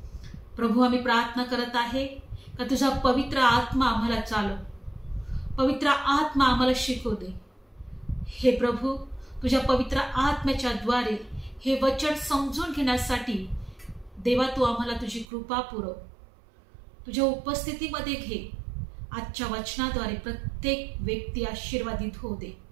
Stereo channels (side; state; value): left; drops out; at 15.2 s